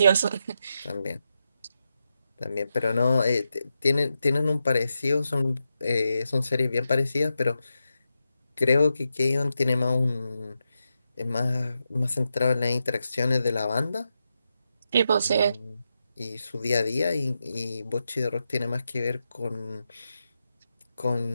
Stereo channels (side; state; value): both; inverted; correlation -0.87